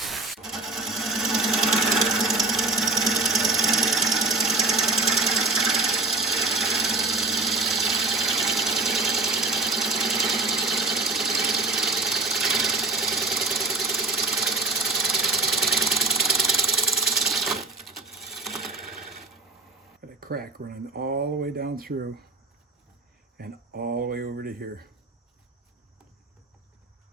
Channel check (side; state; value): left; quieter; 3.3 dB